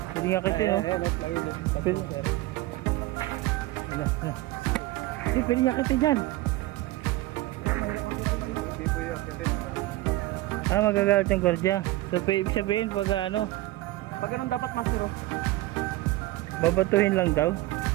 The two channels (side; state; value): left; quieter; 17.9 dB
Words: Pwede nga kitin oh. Eh, no, plywood. Pwede. Sir. Ano. Hindi, pwede nga kitin yan. Hindi po yung kitin. Ah, magagalit yung gwardiya. So, ibig sabihin pag ano, Pag ganun dapat master oh. babatuhin lang daw.